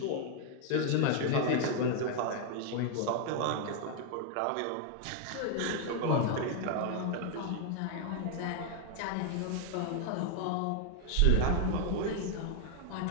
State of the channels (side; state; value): both; different; correlation 0.00